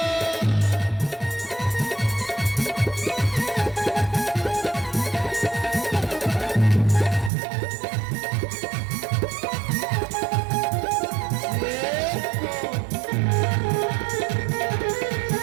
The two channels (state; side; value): drops out; left; at 7.3 s